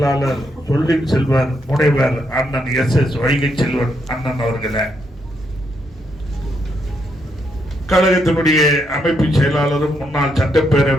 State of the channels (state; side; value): normal; both; correlation 0.77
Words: சொல்லின் செல்வர் முனைவர் அண்ணன் SS வைகை செல்வன் அண்ணன் அவர்களே, கழகத்தினுடைய அமைப்பு செயலாளரும் முன்னாள்